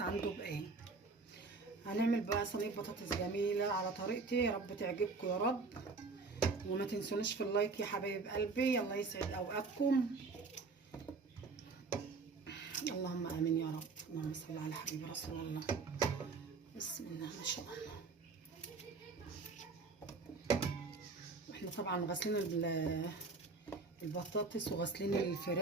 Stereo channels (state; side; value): quieter; left; 4.2 dB